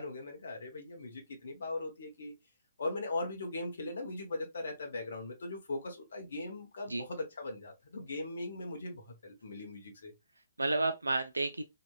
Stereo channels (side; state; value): both; inverted; correlation -0.82